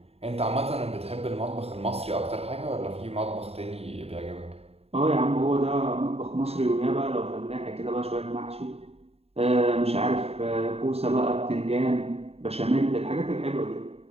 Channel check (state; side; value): late; left; 0.29 ms